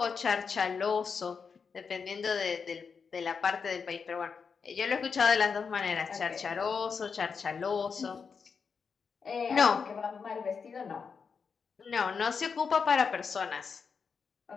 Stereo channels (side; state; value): right; quieter; 5.7 dB